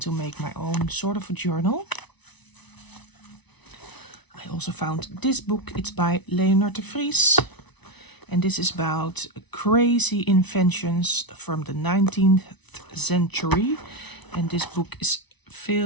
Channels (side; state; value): right; late; 1.0 ms